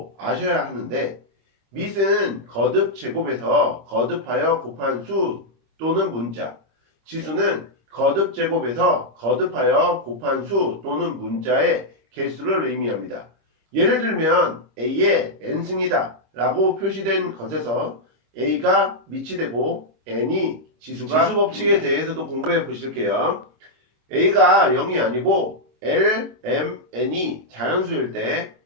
아셔야 하는데, 밑은 거듭 제곱에서 거듭하여 곱한 수 또는 문자, 지수는 거듭 제곱에서 거듭하여 곱한 수 또는 문자의 개수를 의미합니다. 예를 들면 A의 n승이다 라고 표시된 것에서 A가 밑이 되고 n이 지수가 지수 법칙에 대해서도 공부해 보실게요. A가 0이 아니고 L, M, N이 자연수일 때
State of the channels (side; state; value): left; late; 25 ms